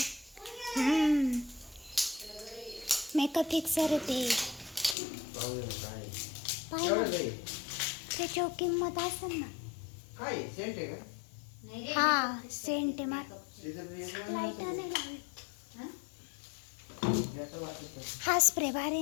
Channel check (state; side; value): drops out; right; at 5.0 s